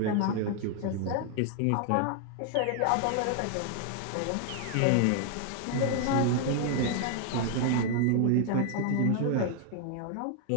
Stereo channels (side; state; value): both; different; correlation 0.00